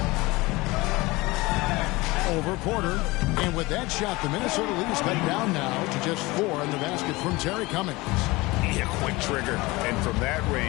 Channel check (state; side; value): quieter; right; 22.0 dB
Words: Over Porter. And with that shot, the Minnesota lead is cut down now to just 4 in the basket from Terry Cummings. Yeah, quick trigger. And from that